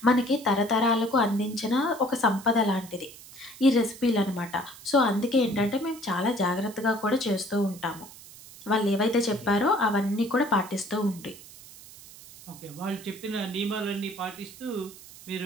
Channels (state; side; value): noise; right; hiss, 18 dB below the sound